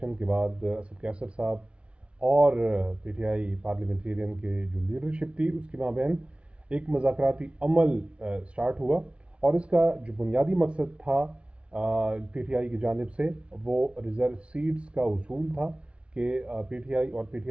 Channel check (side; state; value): left; late; 0.059 ms